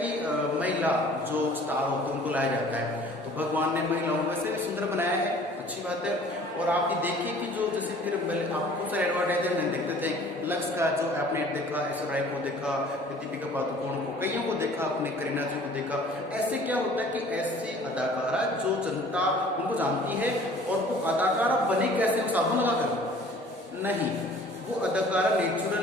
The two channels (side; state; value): both; normal; correlation 0.50